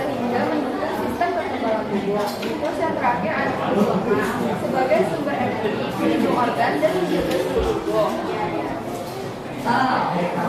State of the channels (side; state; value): both; identical; correlation 1.00